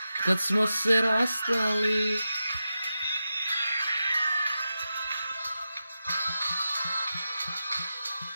Kad smo se rastali.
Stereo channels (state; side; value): inverted; both; correlation -0.90